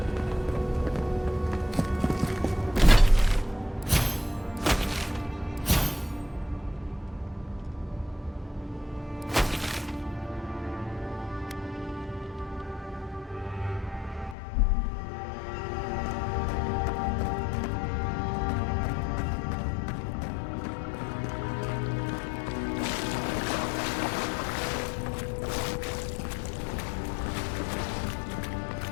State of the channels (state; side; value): drops out; right; at 14.4 s